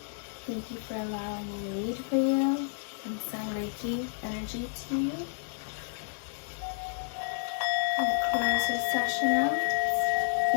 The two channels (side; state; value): right; silent; digital silence